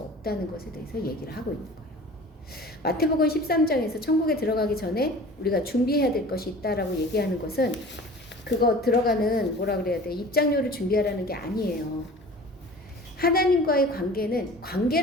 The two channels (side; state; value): both; normal; correlation 0.42